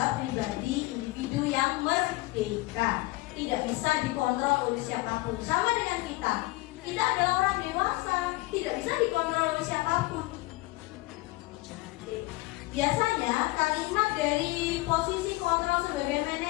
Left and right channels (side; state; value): right; quieter; 21.2 dB